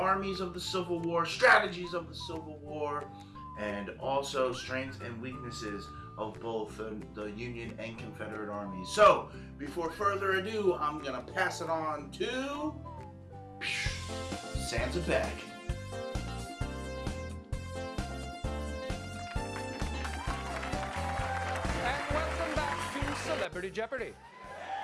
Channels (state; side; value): identical; both; correlation 1.00